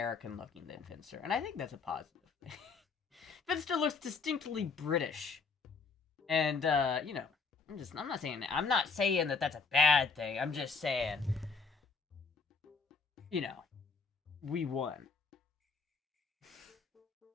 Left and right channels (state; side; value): quieter; right; 4.8 dB